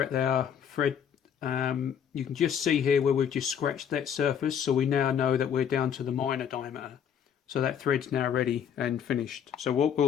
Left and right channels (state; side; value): quieter; right; 8.3 dB